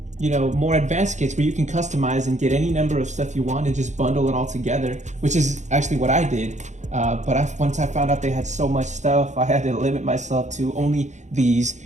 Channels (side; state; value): left; late; 0.34 ms